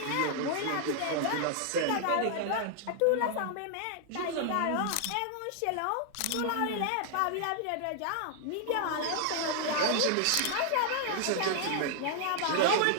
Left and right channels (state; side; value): different; both; correlation 0.00